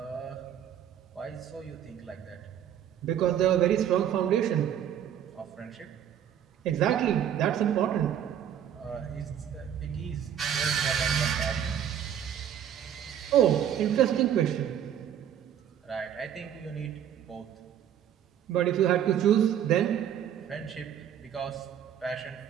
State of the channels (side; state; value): left; quieter; 9.7 dB